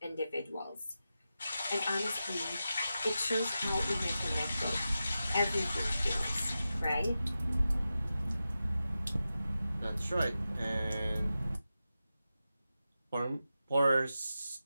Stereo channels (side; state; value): both; inverted; correlation -0.92